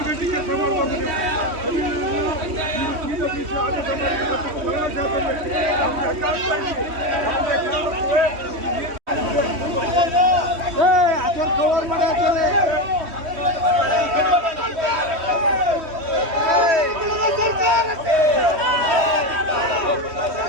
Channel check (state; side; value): late; left; 3.1 ms